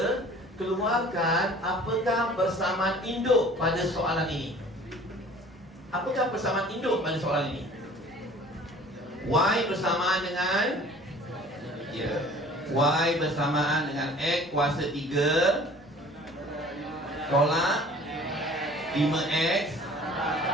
keluarkan apakah persamaan induk pada soalan ini. Apakah persamaan induk pada soalan ini? Y bersamaan dengan Y bersamaan dengan X kuasa 3 tolak 5X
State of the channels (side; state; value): both; normal; correlation 0.48